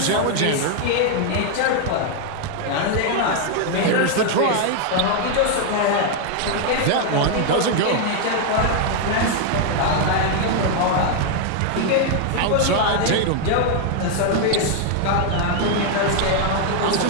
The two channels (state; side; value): different; both; correlation 0.00